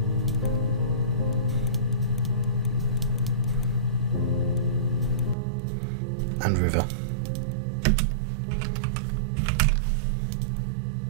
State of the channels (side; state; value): left; drops out; at 5.4 s